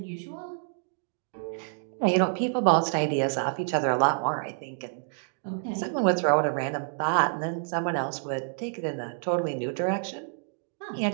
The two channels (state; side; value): silent; left; 59 dB below the other